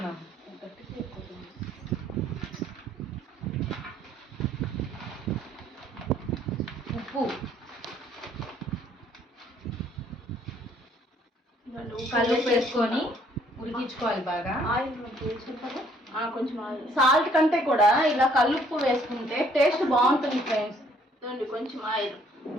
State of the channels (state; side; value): normal; both; correlation 0.63